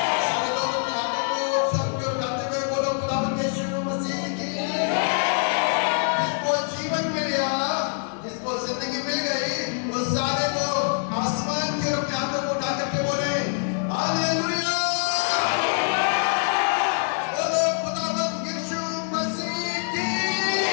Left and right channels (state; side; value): silent; right; 62 dB below the other